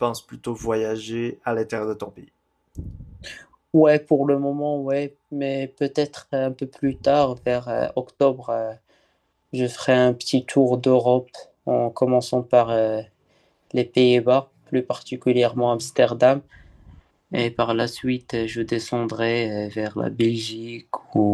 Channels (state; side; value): identical; both; correlation 1.00